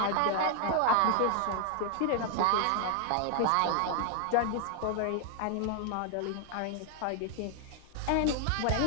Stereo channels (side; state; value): both; different; correlation 0.00